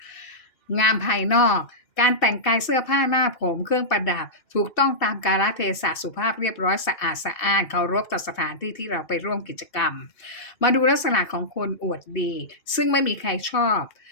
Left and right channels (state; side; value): late; right; 2.7 ms